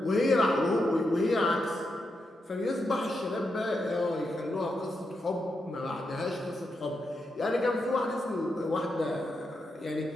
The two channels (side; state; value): both; normal; correlation 0.85